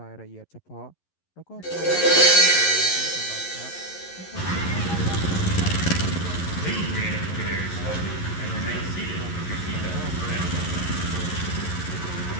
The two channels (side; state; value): right; late; 11 ms